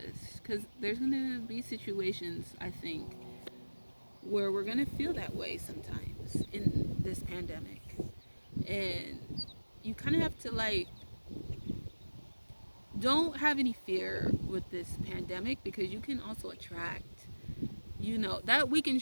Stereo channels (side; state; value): both; inverted; correlation -1.00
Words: because there's gonna be situations, I think, where we're gonna feel that way sometimes in this pandemic, and you kind of have to like don't have any fear with this pandemic, because you can also attract, that